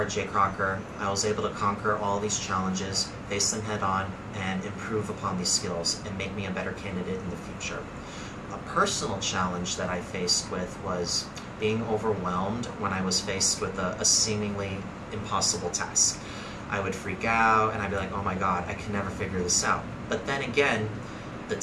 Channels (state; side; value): identical; both; correlation 1.00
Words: Crocker, I was able to conquer all these challenges, face them head on, and improve upon these skills and make me a better candidate in the future. A personal challenge that I faced with was being overwhelmed when I was faced with a seemingly impossible task. I would freak out and I'd be like, oh my god, I can never figure this out. But then again, the